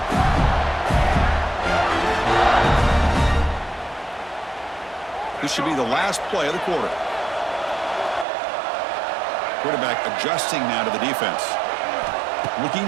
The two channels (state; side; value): drops out; left; at 8.2 s